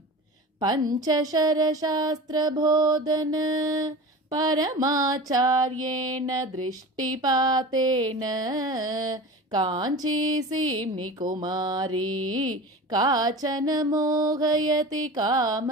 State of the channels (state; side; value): normal; both; correlation 0.33